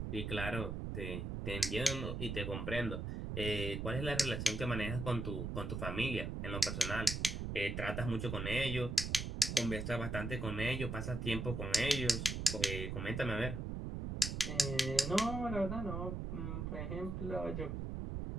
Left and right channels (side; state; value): right; noise; rumble, 3 dB below the sound